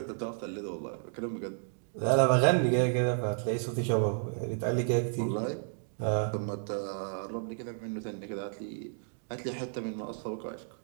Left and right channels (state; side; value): silent; left; digital silence